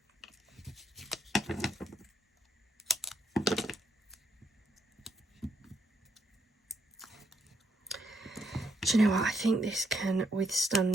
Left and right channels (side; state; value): both; normal; correlation 0.75